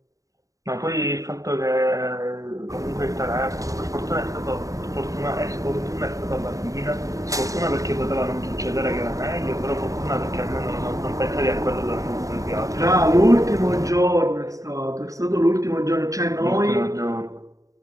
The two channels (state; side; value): late; left; 0.16 ms